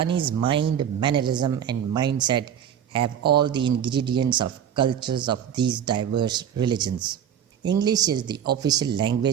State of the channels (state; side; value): quieter; left; 9.2 dB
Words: mind, mannerism, and mindset have all the ingredients of cultures of these diverse religions. English is the official